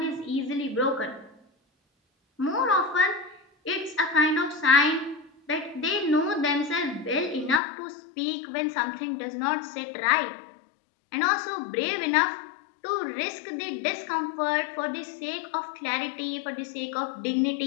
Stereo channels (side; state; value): right; drops out; at 7.6 s